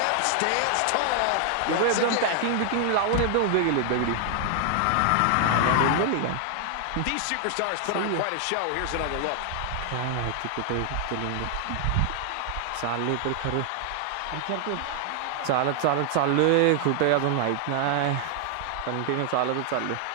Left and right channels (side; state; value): both; different; correlation 0.00